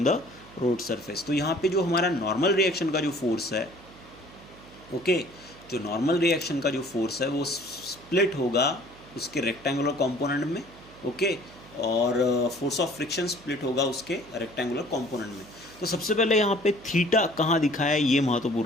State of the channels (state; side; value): noise; right; hum, 22 dB below the sound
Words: द रोड सरफेस। तो यहाँ पे जो हमारा नॉर्मल रिएक्शन का जो फोर्स है, ओके, जो नॉर्मल रिएक्शन का जो फोर्स है वो स्प्लिट होगा उसके रेक्टेंगुलर कंपोनेंट में। ओके, और फोर्स ऑफ फ्रिक्शन स्प्लिट होगा उसके रेक्टेंगुलर कंपोनेंट में। तो सबसे पहले यहाँ पे थीटा कहाँ दिखाया है, ये